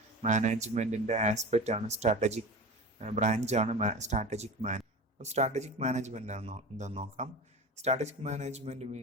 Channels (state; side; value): normal; both; correlation 0.30